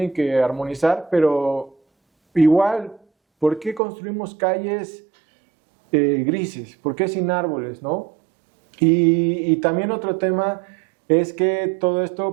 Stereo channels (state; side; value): drops out; left; at 3.8 s